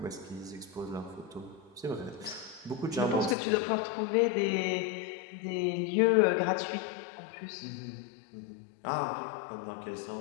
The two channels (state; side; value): drops out; right; at 3.4 s